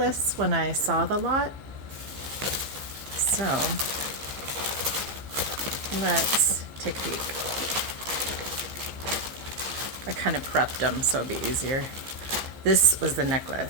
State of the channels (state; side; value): late; left; 15 ms